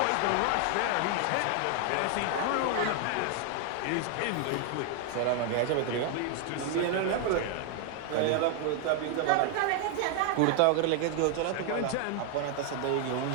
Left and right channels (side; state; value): both; different; correlation 0.00